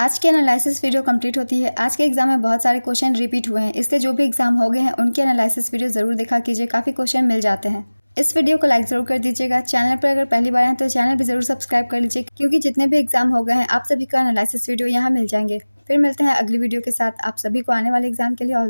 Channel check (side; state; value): both; inverted; correlation -1.00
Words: की एनालिसिस वीडियो कंप्लीट होती है। आज के एग्जाम में बहुत सारे क्वेश्चन रिपीट हुए हैं, इसलिए जो भी एग्जाम हो गए हैं उनके एनालिसिस वीडियो ज़रूर देखा कीजिए, काफ़ी क्वेश्चन मिल जाते हैं। इस वीडियो को लाइक ज़रूर कर दीजिएगा। चैनल पर अगर पहली बार हैं तो चैनल भी ज़रूर सब्सक्राइब कर लीजिए, क्योंकि जितने भी एग्जाम हो गए हैं आप सभी का एनालिसिस वीडियो यहाँ मिल जाएंगे। फिर मिलते हैं अगली वीडियो के साथ। आप सभी को आने वाले एग्जाम के लिए ऑल